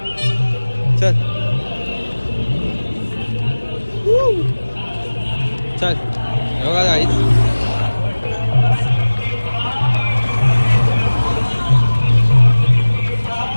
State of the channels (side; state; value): both; inverted; correlation -1.00